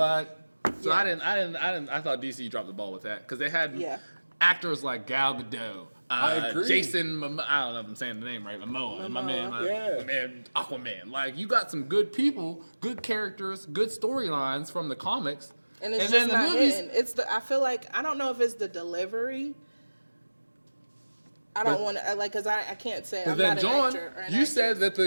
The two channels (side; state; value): both; inverted; correlation -1.00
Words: so Yeah. I thought DC dropped the ball with that because they had Yeah. actors like Gal Gadot, I agree. Jason, I don't know if I'm saying the name right, Momoa, my man, Yeah. my man, Aquaman. Like, you got some good people, good characters, good storylines from the comics. And it's then just not hitting. I feel like, I don't know if it's the delivery. I don't want to, like, because I can't say I'm not an John, actor or an you actress. said that